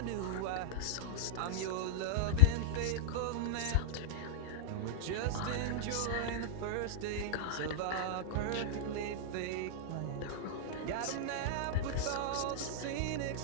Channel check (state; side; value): different; both; correlation -0.02